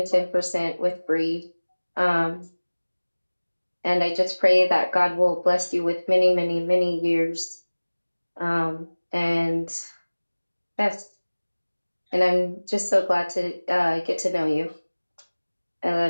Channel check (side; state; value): both; inverted; correlation -1.00